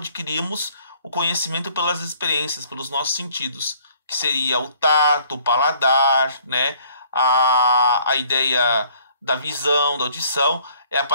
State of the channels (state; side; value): inverted; both; correlation -0.59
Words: o conhecimento pelas experiências, pelos nossos sentidos, que seria o tato, o paladar, né? A ideia da visão, da audição, é a